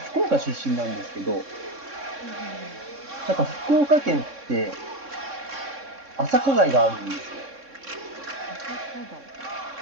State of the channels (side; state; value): left; late; 3.6 ms